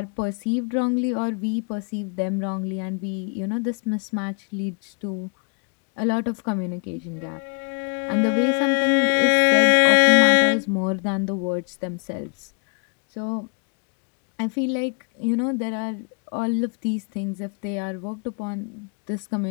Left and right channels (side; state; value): right; quieter; 38.5 dB